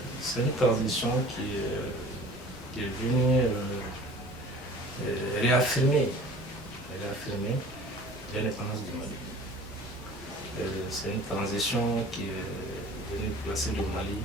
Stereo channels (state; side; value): normal; both; correlation 0.45